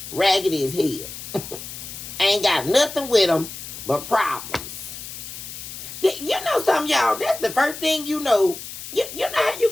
Raggedy as hell. Ain't got nothing with him but problems. You know something, y'all? That's the first thing you know. You know how you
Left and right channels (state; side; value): noise; left; hiss, 11 dB below the sound